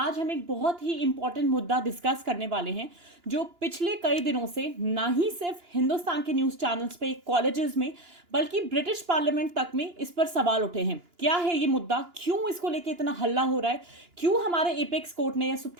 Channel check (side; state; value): left; late; 2.9 ms